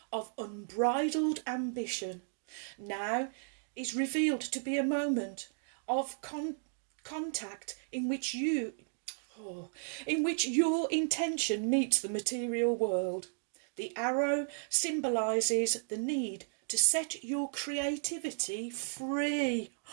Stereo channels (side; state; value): left; silent; digital silence